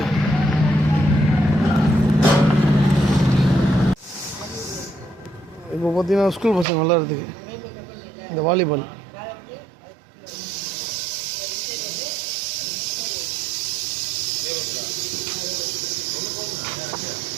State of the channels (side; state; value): left; drops out; at 6.7 s